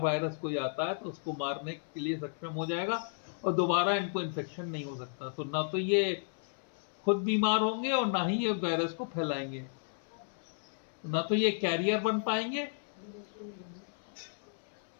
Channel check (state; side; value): silent; right; 55 dB below the other